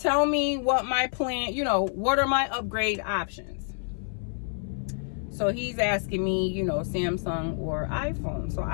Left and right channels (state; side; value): silent; right; 58 dB below the other